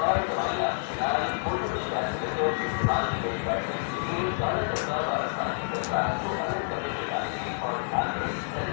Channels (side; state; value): right; silent; digital silence